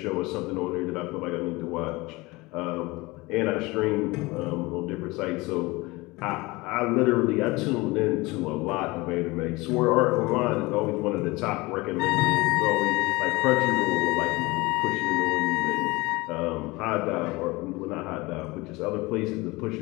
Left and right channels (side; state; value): right; quieter; 22.6 dB